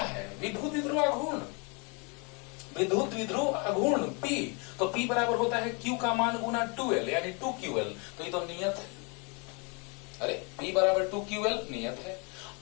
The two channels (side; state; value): right; quieter; 33.1 dB